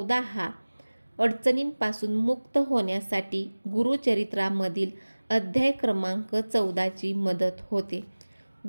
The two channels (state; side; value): inverted; both; correlation -1.00